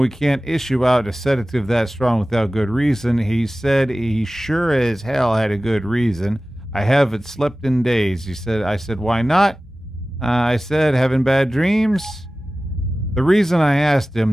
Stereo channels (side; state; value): both; normal; correlation 0.96